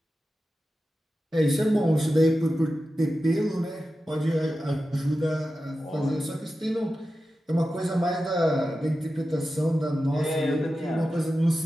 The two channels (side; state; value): both; normal; correlation 0.92